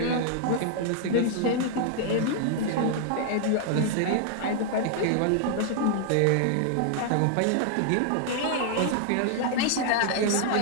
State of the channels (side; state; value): both; different; correlation 0.00